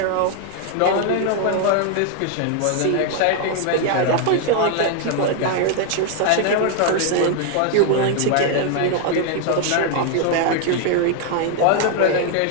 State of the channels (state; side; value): different; both; correlation 0.01